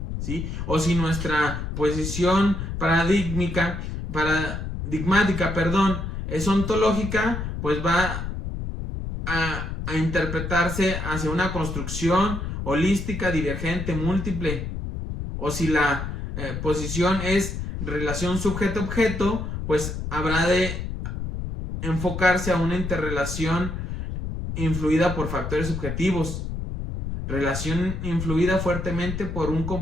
¿sí? O si nuestra posición paradigmática, es ontológica, pues va a interpretarse hacia una construcción holística, divergente, múltiple. O si la posición es relación sujeto-objeto, pues habrá de enfocarse a una interrelación influida por factores subjetivos, relación influida fuertemente por un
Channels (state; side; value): noise; left; rumble, 5 dB below the sound